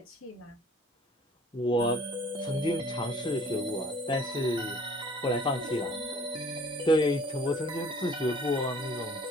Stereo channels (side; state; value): both; normal; correlation 0.53